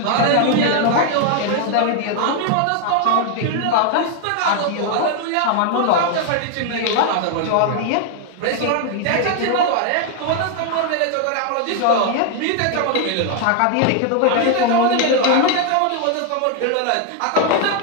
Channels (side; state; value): both; different; correlation 0.00